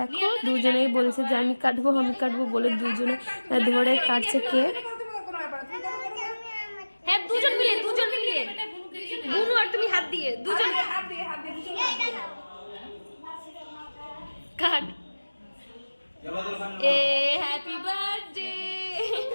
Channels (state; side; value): inverted; both; correlation -1.00